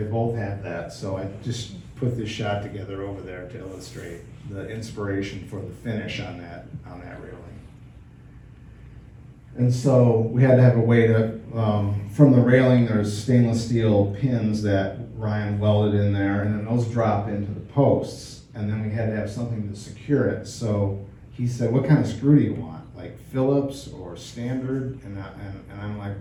both have that. So I just put this shot together over there to illustrate the inspiration for the finish on that railing. And so we had to have a way to, from the railing, there's stainless steel pins that Ryan welded in there, and then those drop into the posts, and then we had to have something to secure it. So he said, what kind of screw do you want? Like Phillips or standard? And I'm like,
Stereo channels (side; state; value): both; identical; correlation 1.00